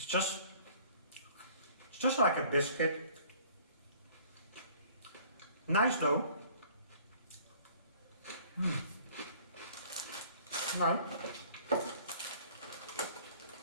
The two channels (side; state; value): both; inverted; correlation -0.53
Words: just like a biscuit. Nice though. Nice.